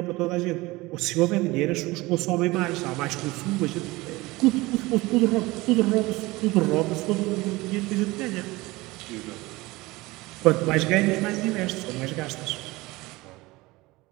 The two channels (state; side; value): quieter; left; 21.1 dB